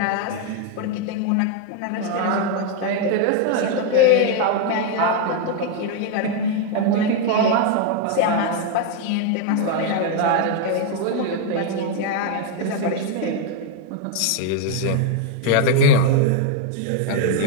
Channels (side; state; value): both; different; correlation 0.01